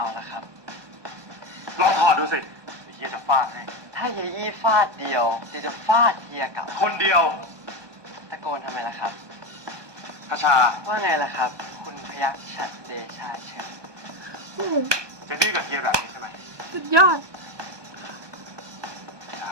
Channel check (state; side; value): late; left; 1.2 ms